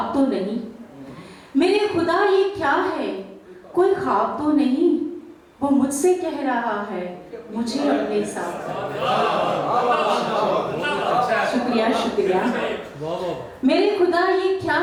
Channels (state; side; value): identical; both; correlation 1.00